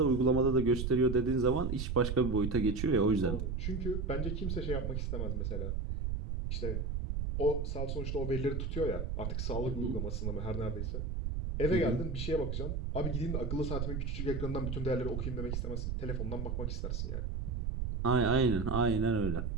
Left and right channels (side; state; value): right; noise; rumble, 2 dB below the sound